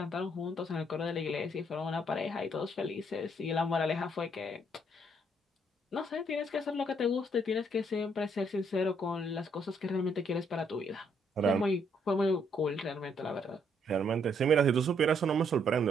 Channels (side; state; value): both; normal; correlation 0.70